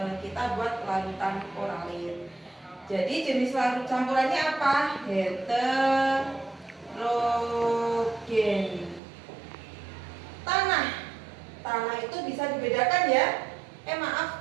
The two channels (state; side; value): drops out; left; at 9.0 s